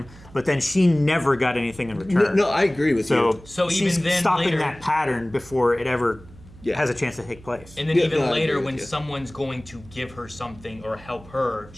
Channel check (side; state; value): right; noise; hum, 21 dB below the sound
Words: but then she never got anything in return. No, I agree with you. So she's even then stopping later, that pattern before it ever has a chance to take place. And then even later, when someone's going to give her something or help her,